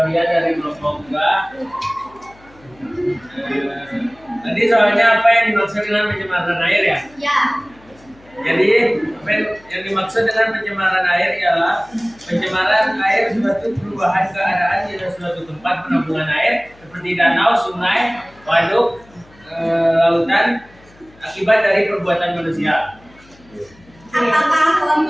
dari kelompok 2. Tadi soalnya apa yang dimaksud dengan pencemaran air ya? Ya. Jadi apa yang dimaksud dengan pencemaran air ialah pencemaran air suatu perubahan keadaan di suatu tempat penampungan air seperti danau, sungai, waduk, lautan akibat dari perbuatan manusia. Apakah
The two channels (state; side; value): noise; left; hum, 27 dB below the sound